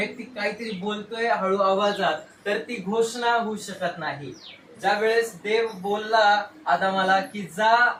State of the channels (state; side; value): identical; both; correlation 1.00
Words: काहीतरी बोलतोय हळू आवाजात, तर ती घोषणा होऊ शकत नाही. ज्या वेळेस देव बोलला आदामाला की जा